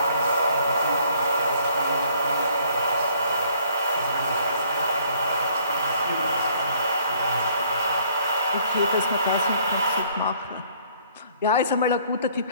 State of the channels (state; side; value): inverted; both; correlation -0.61